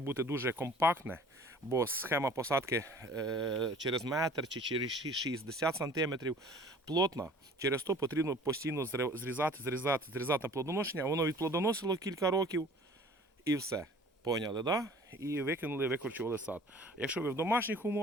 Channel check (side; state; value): both; normal; correlation 0.49